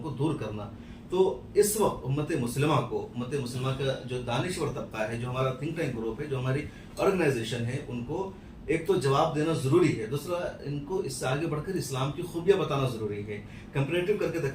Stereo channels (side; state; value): both; identical; correlation 1.00